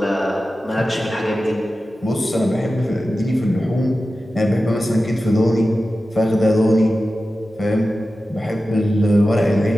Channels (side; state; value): both; normal; correlation 0.94